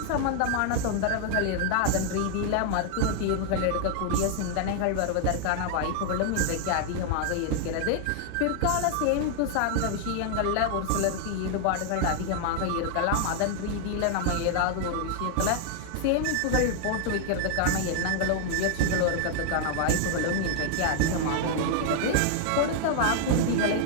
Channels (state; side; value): different; both; correlation 0.00